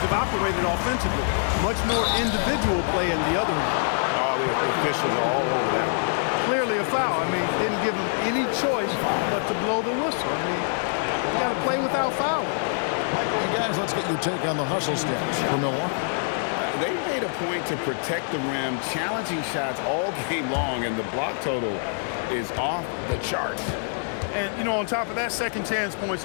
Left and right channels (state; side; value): silent; right; digital silence